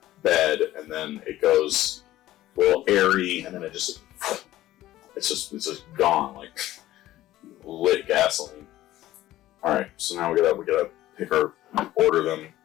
bed, and then it goes a little airy, and then it's just gone like lit gasoline. All right, so now we gotta pick order them,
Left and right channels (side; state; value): right; quieter; 14.9 dB